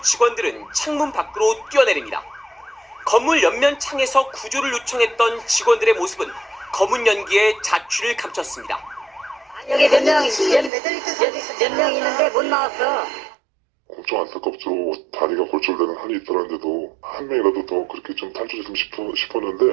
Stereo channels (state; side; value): drops out; left; at 10.7 s